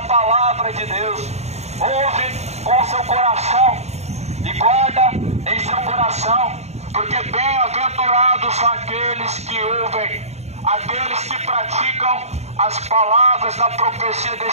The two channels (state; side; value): late; left; 0.32 ms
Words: palavra de Deus. Ouve com o seu coração e guarda em seu coração, porque bem-aventurados são aqueles que ouvem, aqueles que praticam as palavras da profecia